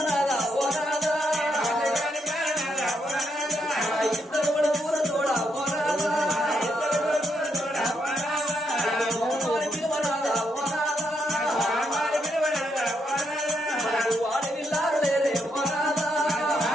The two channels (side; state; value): both; normal; correlation 0.78